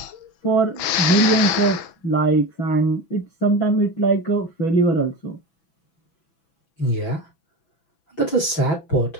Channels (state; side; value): late; right; 6.0 ms